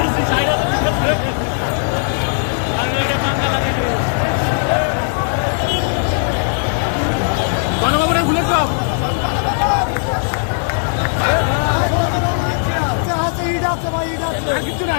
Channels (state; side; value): silent; right; digital silence